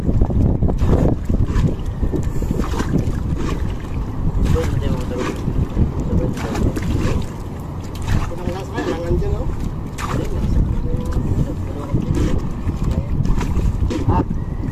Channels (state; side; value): identical; both; correlation 1.00